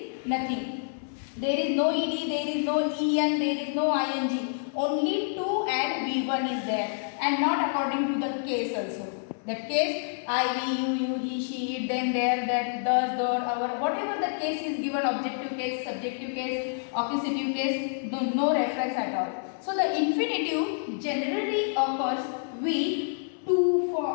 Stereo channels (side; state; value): right; silent; 57 dB below the other